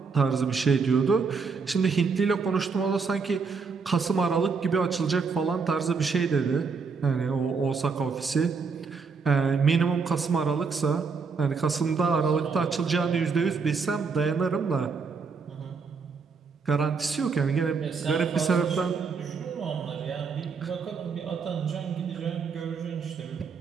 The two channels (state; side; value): quieter; left; 5.1 dB